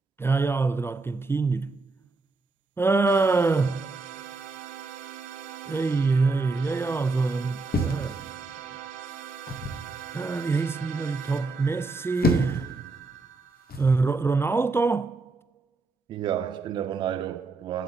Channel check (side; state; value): left; quieter; 3.5 dB